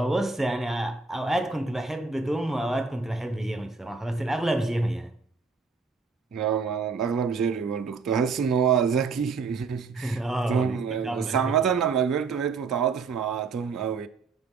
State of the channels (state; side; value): quieter; left; 4.6 dB